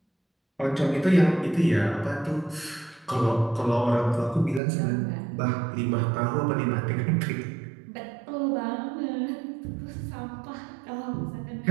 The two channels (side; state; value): left; drops out; at 4.6 s